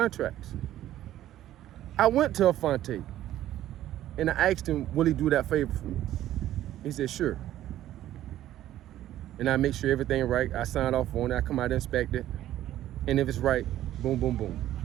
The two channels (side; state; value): left; quieter; 13.1 dB